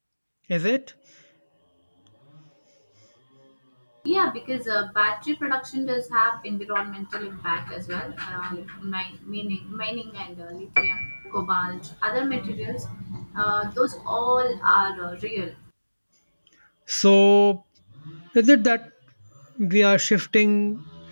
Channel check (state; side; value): inverted; both; correlation -1.00